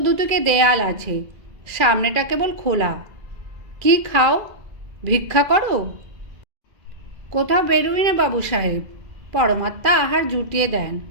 দুটোকে দেয়াল আছে, সামনেটা কেবল খোলা। কি খাও? ভিক্ষা করো? কোথাও বেরোই না বাবু সাহেব, পরমাত্মা আহার জুটিয়ে দেন।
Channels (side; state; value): left; late; 2.3 ms